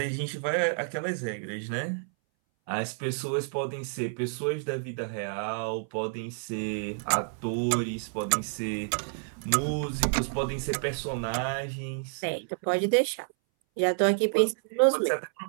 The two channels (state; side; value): silent; left; 58 dB below the other